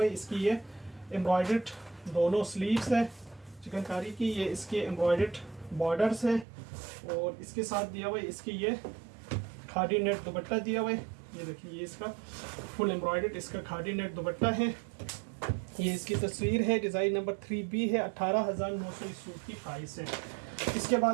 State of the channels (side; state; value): left; drops out; at 6.5 s